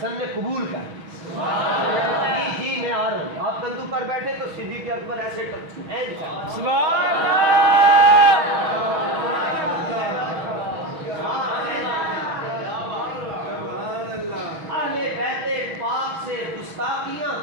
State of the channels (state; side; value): late; left; 6.2 ms